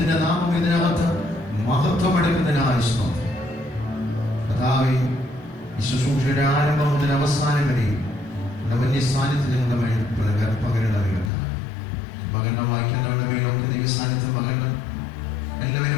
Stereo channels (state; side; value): drops out; right; at 11.3 s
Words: നാമം ഇതിനകത്ത് മഹത്വമെടുക്കുന്നതിനായി സ്തോത്രം. കർത്താവേ, ഈ ശുശ്രൂഷയുടെ ആരംഭം മുതൽ അവസാനം വരെയും വലിയ സാന്നിധ്യം ഞങ്ങളുടെ മേൽ പകരണമേ കർത്താവേ. പകർന്ന വാക്യങ്ങളുടെ മേലൊക്കെ ദൈവ സാന്നിധ്യം പകരണം.